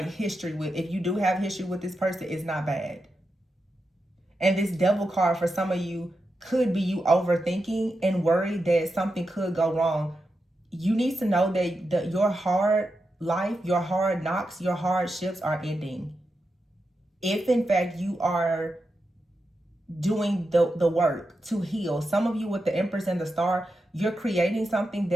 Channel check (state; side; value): normal; both; correlation 0.88